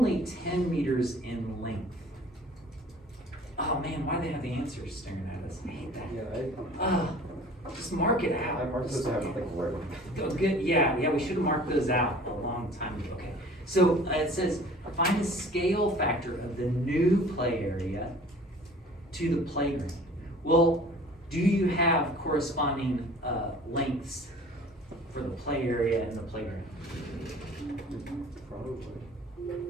10 meters in length. Oh man, why do they have the answers staring at us? I hate that. Yeah, Just mark it out. I marked this out, like, where? Oh, good, yeah, we should have marked those out a long time ago. Okay, so it says, find the scale factor of the new play area to the playground. Well, do you have corresponding lengths for the play area and the playground? Probably.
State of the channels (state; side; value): normal; both; correlation 0.48